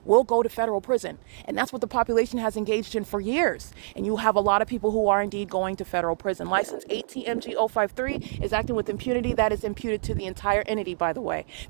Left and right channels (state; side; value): silent; left; digital silence